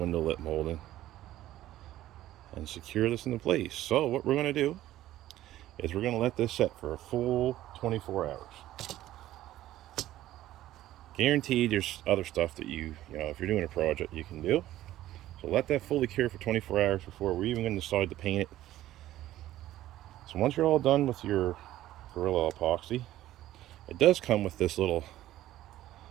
lip molding and secure this into place. So what we're going to do is we're going to let this set for a full 24 hours. Guaranteed there's other stuff that you know, if you're doing a project, you can do. So let that fully cure for 24 hours before we're even going to decide to paint it. So once you're all done with your Gorilla epoxy, it does come with this little,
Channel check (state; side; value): quieter; left; 14.2 dB